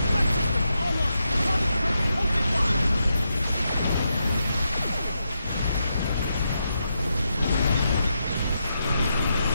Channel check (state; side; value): inverted; both; correlation -0.84